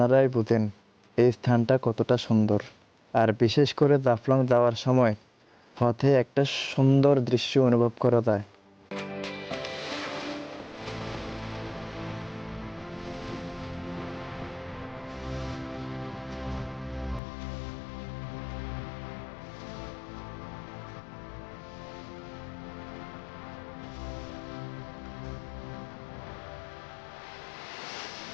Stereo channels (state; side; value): drops out; right; at 17.2 s